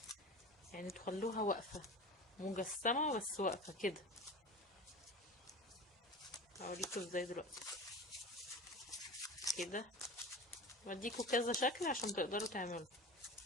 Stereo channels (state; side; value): normal; both; correlation 0.33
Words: تخلوها واقفه مجسمه بس واقفه كده. هوريكم ازاي دلوقتي كده، بديكوا كذا شكل عشان تقدروا تعملوا